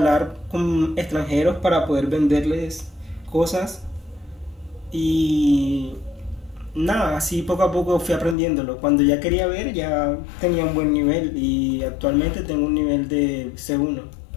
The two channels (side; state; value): right; drops out; at 8.3 s